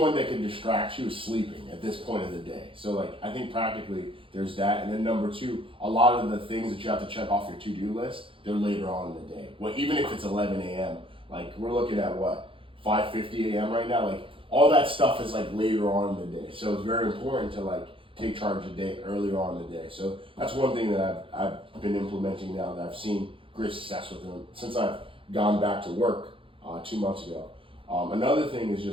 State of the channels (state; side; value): late; left; 0.25 ms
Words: that can distract you is sleeping at this point of the day. So like I think practically there's that. And then number two, a lot of the things that you have to check off your to-do list, they're later on in the day. Well, even if it's 11 a.m., like we're looking at what, 5:50 a.m. right now. Like all that stuff is like later on in the day. So it's very important to like take charge of the day earlier on in the day. So that's one thing that I've been implementing now that I've seen great success with them since I've gone back to work 2 months ago. Another thing is